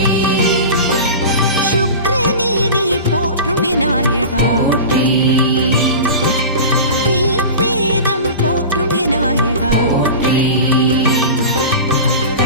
சுக்ரநீதி போற்றும் விநாயகா போற்றி ரிக்வேதம் போற்றும் விநாயகா போற்றி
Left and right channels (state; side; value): inverted; both; correlation -0.31